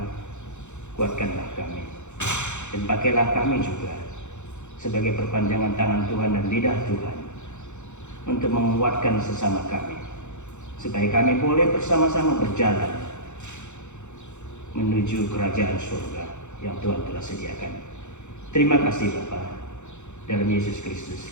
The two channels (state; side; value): late; right; 0.83 ms